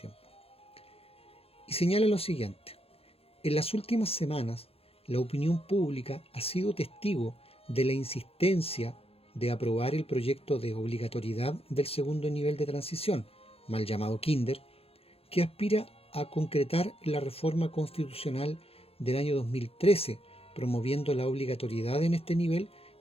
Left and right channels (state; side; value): late; right; 0.28 ms